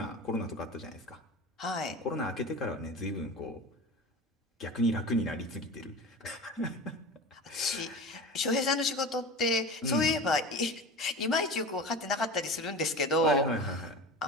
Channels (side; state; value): both; normal; correlation 0.32